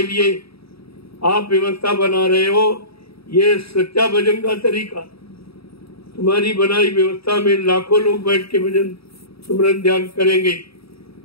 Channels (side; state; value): right; late; 0.76 ms